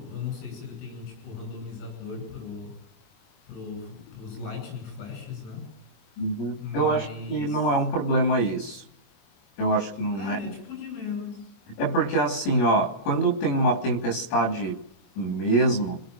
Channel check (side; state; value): right; late; 25 ms